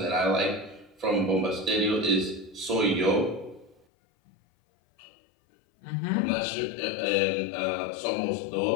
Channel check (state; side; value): drops out; right; at 3.8 s